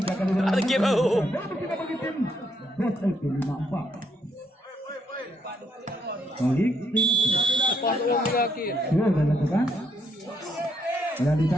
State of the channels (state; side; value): normal; both; correlation 0.74